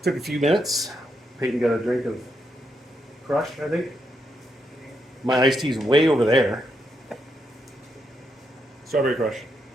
took a few minutes. Peyton got a drink of Crush, I think. My iced tea's way over there. Strawberry Crush.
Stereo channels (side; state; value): both; normal; correlation 0.80